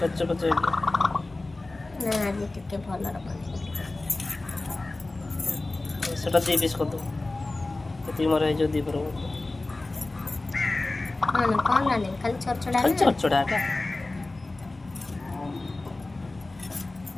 বাচ্চা না আজ টিকে ভালো রাখবো সেটা দিয়ে পিস কর দাও তুই মারে এই যদি করব কোন না খালি চড়চড়াটা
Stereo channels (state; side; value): quieter; right; 3.1 dB